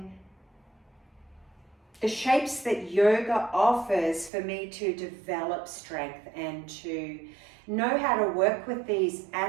the shapes that yoga offers for me to develop strength and to know how to work with these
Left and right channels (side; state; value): left; drops out; at 4.3 s